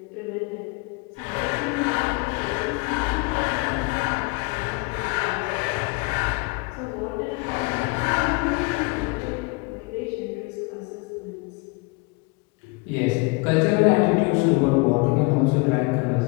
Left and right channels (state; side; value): quieter; right; 27.4 dB